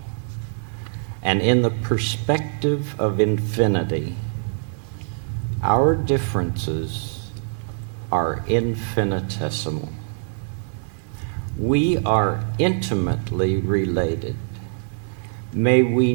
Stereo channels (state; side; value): silent; left; digital silence